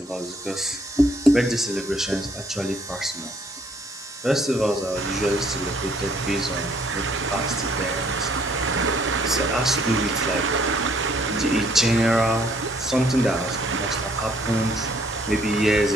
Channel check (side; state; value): both; normal; correlation 0.64